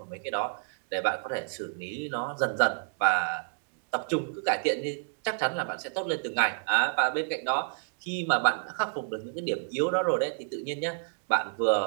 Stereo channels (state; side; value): silent; left; digital silence